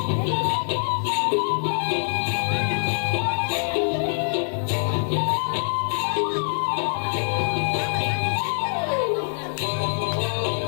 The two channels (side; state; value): right; silent; digital silence